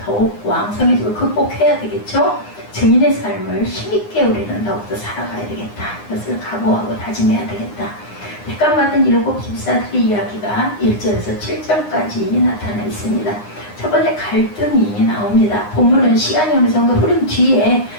더욱 왕성해지고 극복해야 되겠죠? 증인의 삶을 힘있게 우리는 더욱더 살아가야 되겠다. 그것을 각오하고 다짐해야 되겠다. 택감받은 7 집사들의 이야기가 1절에서 7절까지 나타나 있습니다. 첫 번째 갈등이 나옵니다. 본문은 시간이 어느 정도 흐른 뒤에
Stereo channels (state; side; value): late; right; 9.7 ms